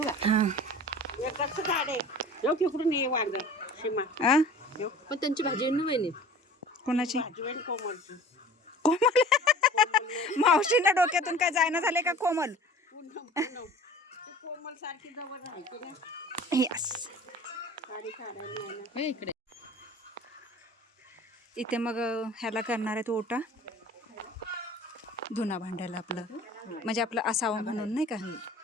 का. हा. कसं झाड आहे. येऊ तिकडून ये वांग सीमा. आ पण त्यांची भाजी आहे ना वहिनी. कोणाची भाजी आहे कोमलची. कोमल. मावशींना डोक्यातून काय जायना झाले का कोमल. पूनम पूनम. ती कोमल सारखी जवळ राहायची ना. यस. साडी काढायला नाही ना. इकडे इथे मग ह्याला करणार आहे तो ओटा धुना भांड्याला आपलं म्हणजे आपलं असावं म्हणून नाही का.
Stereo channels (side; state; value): both; normal; correlation 0.43